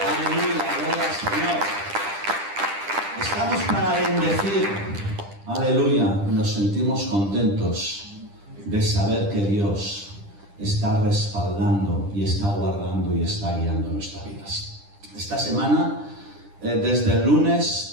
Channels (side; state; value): left; late; 10 ms